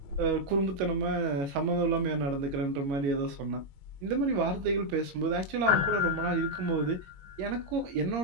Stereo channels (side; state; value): left; late; 22 ms